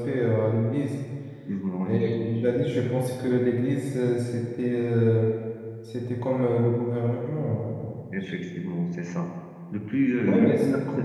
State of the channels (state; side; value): identical; both; correlation 1.00